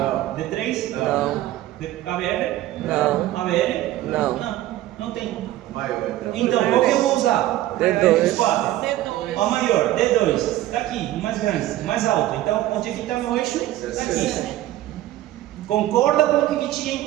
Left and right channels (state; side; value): quieter; left; 14.7 dB